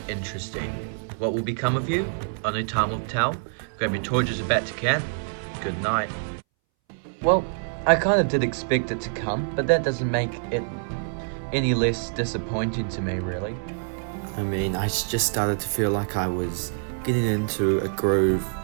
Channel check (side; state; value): left; silent; 61 dB below the other